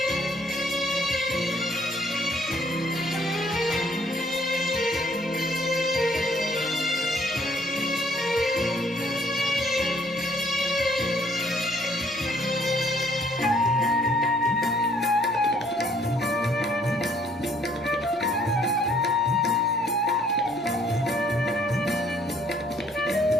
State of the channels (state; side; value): noise; right; hum, 29 dB below the sound